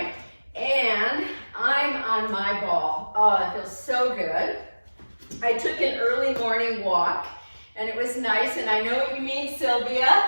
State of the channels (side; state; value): both; inverted; correlation -1.00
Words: and I'm on my ball. Oh, it feels so good. I took an early morning walk, and it was nice, and I know what you mean, Sylvia.